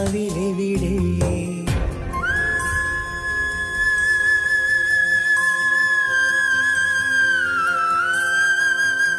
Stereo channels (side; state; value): both; identical; correlation 1.00